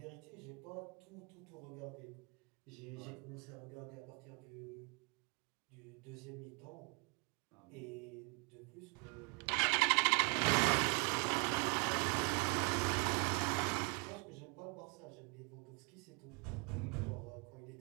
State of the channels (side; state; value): left; quieter; 33.6 dB